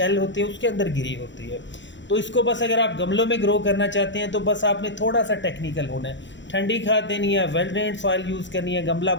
होते हैं, उसके अंदर गिरी होती है। तो इसको बस अगर आप गमलों में ग्रो करना चाहते हैं तो बस आपने थोड़ा सा टेक्निकल होना है। ठंडी खाद देनी है, वेल ड्रेन्ड सॉइल यूज़ करनी है, गमला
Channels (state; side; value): late; right; 0.53 ms